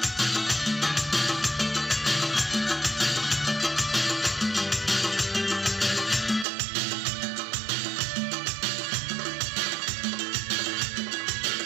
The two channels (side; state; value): left; drops out; at 6.5 s